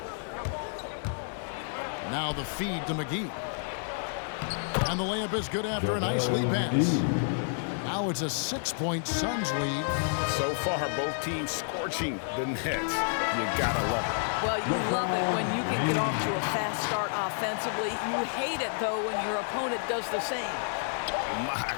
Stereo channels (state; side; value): silent; right; 57 dB below the other